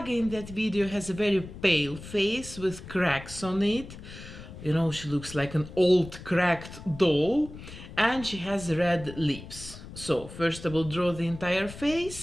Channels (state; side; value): noise; left; rumble, 14 dB below the sound